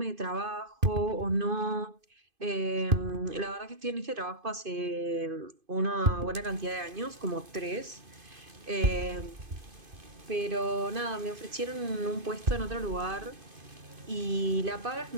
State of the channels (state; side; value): late; left; 2.5 ms